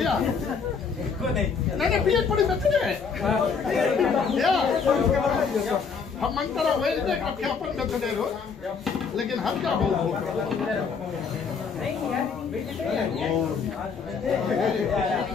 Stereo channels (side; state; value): right; quieter; 5.7 dB